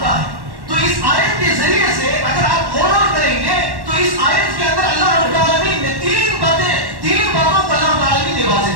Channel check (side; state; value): left; late; 1.1 ms